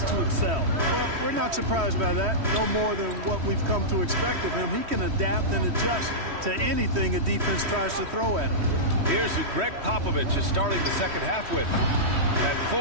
to excel. Well, we're not surprised by that. No more than what we've come to expect of him. He can adapt and adjust to anything a defense tries to throw at him. Here's who Greg Popovich is starting the second half with. At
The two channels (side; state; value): left; late; 3.1 ms